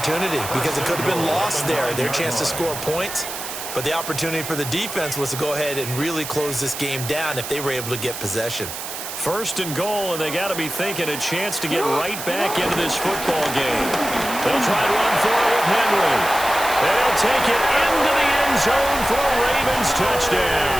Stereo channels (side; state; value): right; noise; hiss, 8 dB below the sound